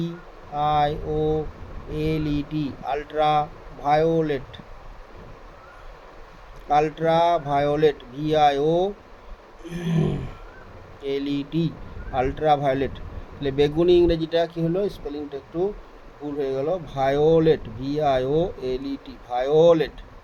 ultraviolet, ultraviolet, VIOLET, ultraviolet. তাহলে বেগুনি ইংরেজিটা কী হলো? স্পেলিংটা একটু ভুল হয়ে গেল, ভায়োলেট, VIOLET, ভায়োলেট।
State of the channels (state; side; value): identical; both; correlation 1.00